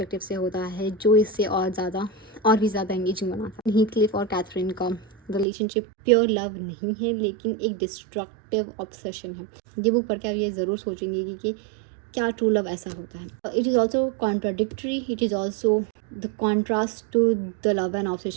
से होता है जो इससे और भी ज़्यादा एंगेजिंग बनाता है। हीथक्लिफ और कैथरीन का रिलेशनशिप प्योर लव नहीं है, लेकिन एक डिस्ट्रक्टिव ऑब्सेशन है। ये बुक पढ़ के आप ये ज़रूर सोचेंगे कि क्या ट्रू लव ऐसा होता है। It is also contradictory, it is also the contrast to the love and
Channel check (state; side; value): drops out; left; at 5.5 s